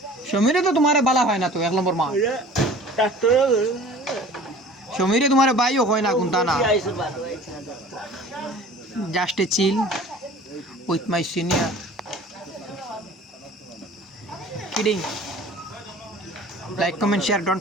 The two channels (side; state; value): both; normal; correlation 0.45